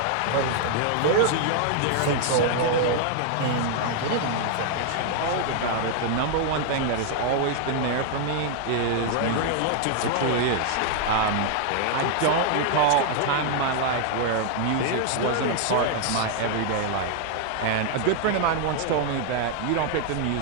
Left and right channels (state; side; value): different; both; correlation 0.00